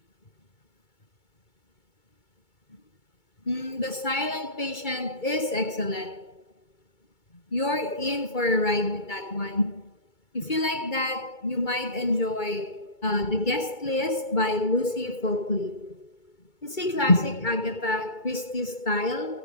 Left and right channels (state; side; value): late; right; 2.2 ms